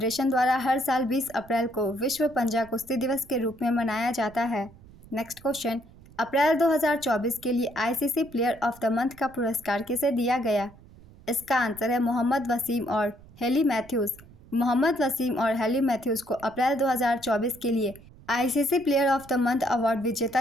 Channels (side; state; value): right; noise; rumble, 22 dB below the sound